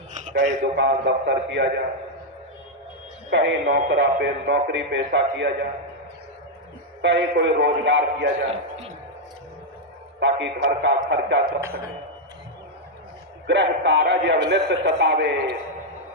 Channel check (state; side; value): normal; both; correlation -0.01